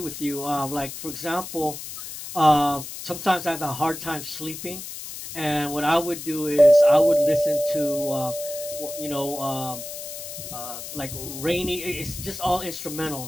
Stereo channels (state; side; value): noise; left; hiss, 10 dB below the sound